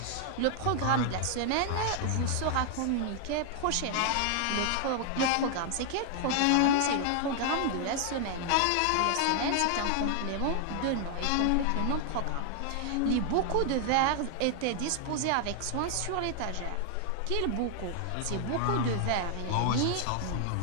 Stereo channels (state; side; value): different; both; correlation 0.00